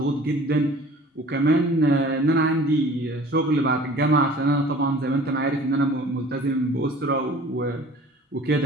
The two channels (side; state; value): both; normal; correlation 0.47